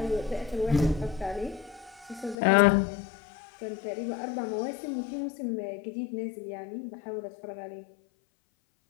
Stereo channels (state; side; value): drops out; right; at 2.4 s